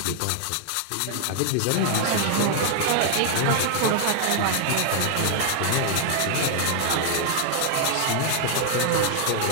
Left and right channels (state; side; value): different; both; correlation 0.00